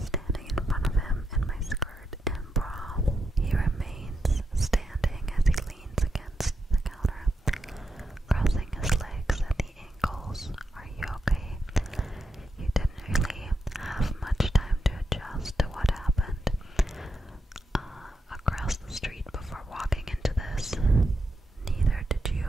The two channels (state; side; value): normal; both; correlation 0.84